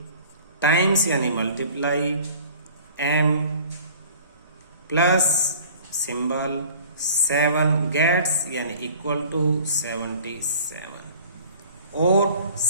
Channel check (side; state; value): both; inverted; correlation -0.47